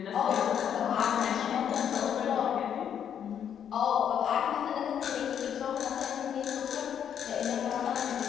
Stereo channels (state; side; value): quieter; right; 8.8 dB